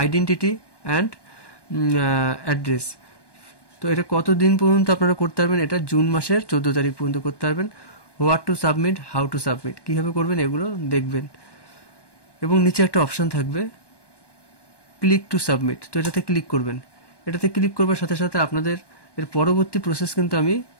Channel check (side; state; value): right; late; 1.2 ms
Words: and address. তো এটা কতদিন পর্যন্ত আপনারা করতে পারবেন, এটা জুন মাসের 14 তারিখ পর্যন্ত করতে পারবেন। What to submit, how to submit, কীভাবে করবেন এগুলো দেখবেন। এবং নিচে একটা অপশান থাকবে ক্লিক টু সাবমিট, তো এটাতে ক্লিক করবেন। এটাতে ক্লিক করবার সাথে সাথে আপনাদের এর পরবর্তী প্রসেস কিন্তু আমি